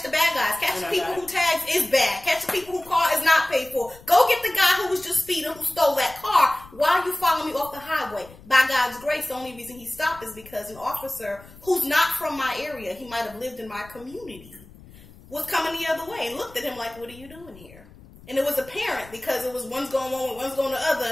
the bad guys. Catch the people who tags is bad. Catch the people who car is not paid for. Go get the guy who was just speeding, who stole that car. Why are you following me off the highway? By God's grace, the only reason he stopped is because an officer who's not from my area, he might have lived in my community, was coming the other way and looked at him like, what are you doing here? And it was apparent because it was one's going one way, one's going the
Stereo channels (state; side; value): noise; left; rumble, 22 dB below the sound